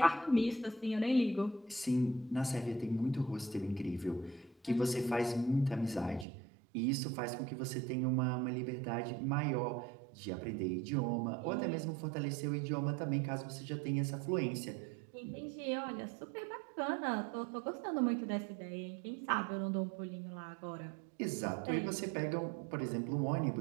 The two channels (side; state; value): left; drops out; at 6.2 s